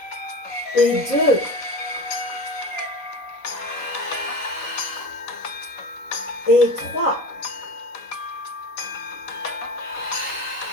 Et 2. Et 3.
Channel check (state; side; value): late; right; 3.8 ms